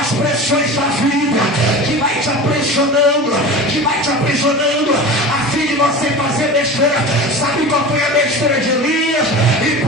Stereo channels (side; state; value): both; normal; correlation 0.32